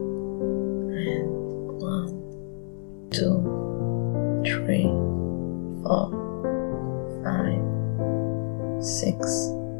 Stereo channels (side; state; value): right; silent; digital silence